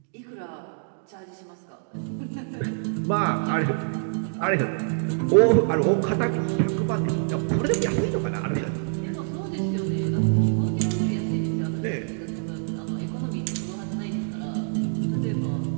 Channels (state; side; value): silent; left; digital silence